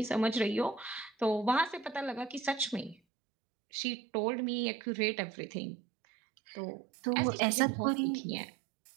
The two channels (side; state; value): left; drops out; at 3.0 s